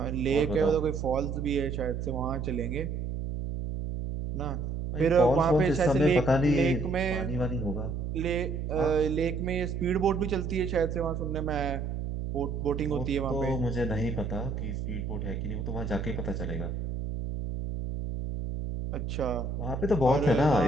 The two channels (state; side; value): noise; right; hum, 4 dB below the sound